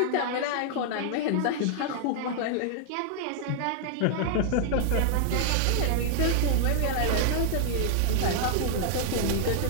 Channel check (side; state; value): both; different; correlation 0.00